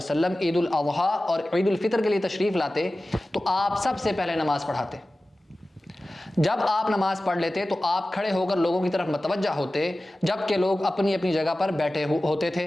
عید الاضحیٰ اور عید الفطر کے لیے تشریف لاتے تو آپ سب سے پہلے نماز پڑھاتے۔ جب آپ نماز پڑھ لیتے تو آپ کھڑے ہو کر لوگوں کی طرف متوجہ ہوتے جبکہ لوگ اپنی اپنی جگہ پر بیٹھے ہوتے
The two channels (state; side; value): normal; both; correlation 0.96